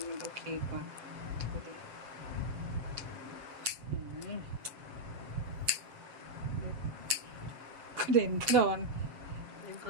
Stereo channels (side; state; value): left; late; 7.3 ms